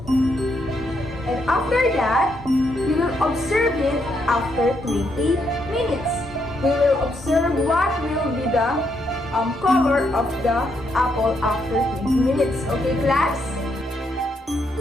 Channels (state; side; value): normal; both; correlation 0.77